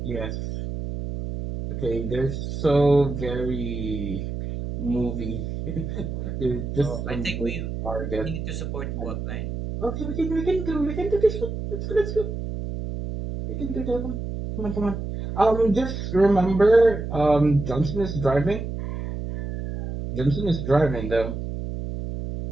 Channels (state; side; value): noise; right; hum, 5 dB below the sound